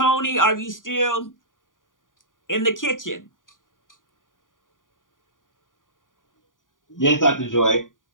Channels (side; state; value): right; late; 0.89 ms